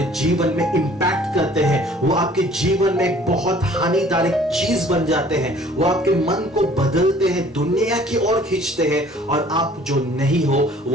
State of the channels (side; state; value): both; normal; correlation 0.53